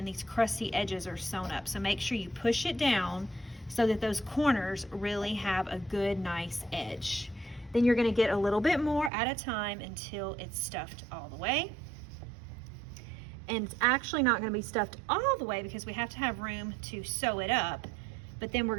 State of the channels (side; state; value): left; drops out; at 9.1 s